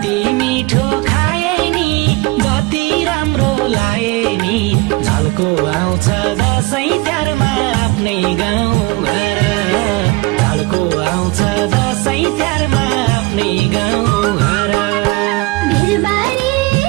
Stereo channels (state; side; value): quieter; left; 23.1 dB